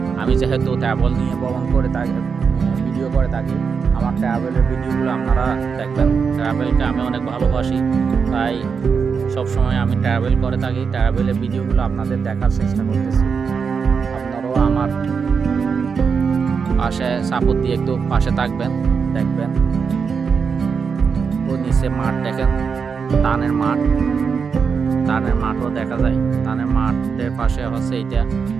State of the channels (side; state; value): left; quieter; 5.8 dB